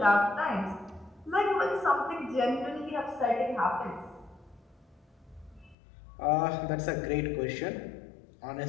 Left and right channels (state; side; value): drops out; right; at 5.8 s